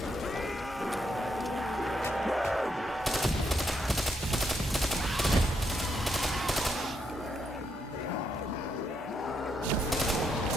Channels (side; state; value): both; normal; correlation 0.78